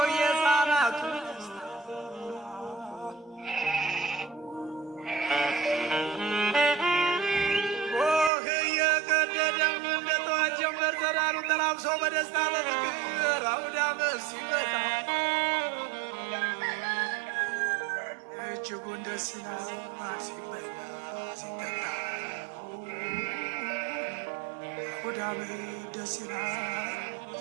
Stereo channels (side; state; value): left; drops out; at 8.3 s